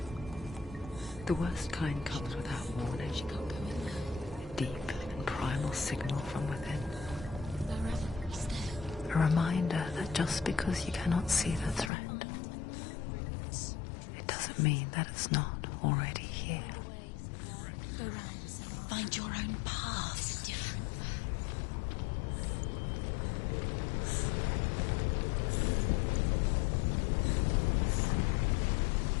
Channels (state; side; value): drops out; right; at 11.9 s